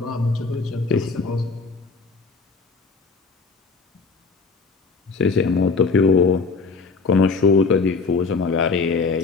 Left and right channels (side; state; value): right; quieter; 4.4 dB